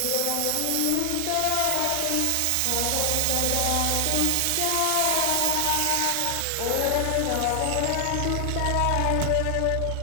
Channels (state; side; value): different; both; correlation 0.00